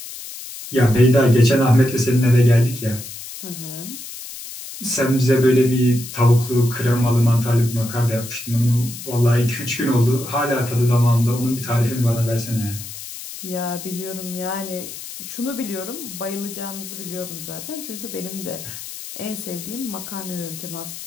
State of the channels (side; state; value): left; noise; hiss, 11 dB below the sound